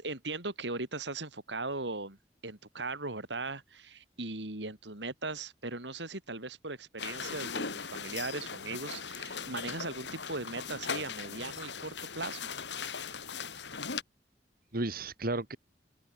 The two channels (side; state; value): both; normal; correlation -0.05